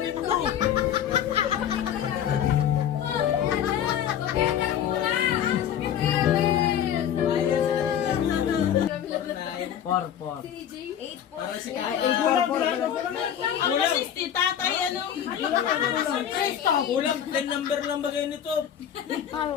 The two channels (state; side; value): quieter; right; 9.7 dB